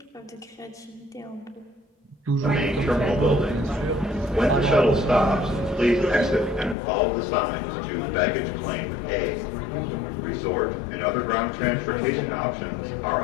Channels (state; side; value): drops out; right; at 6.8 s